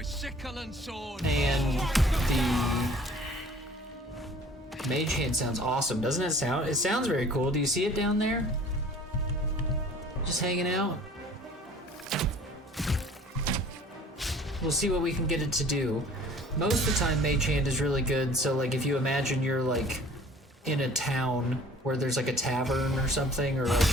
sickle and sword. and the mage hand sounds awesome, doesn't it sound? It sounds very cool. Do you see it down there? Just hanging out. We'll see what we can get it to do. Most of the time mage hand is really good, so like if you imagine you're like in a town where there's like a tavern or something, or like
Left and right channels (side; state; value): both; normal; correlation 0.50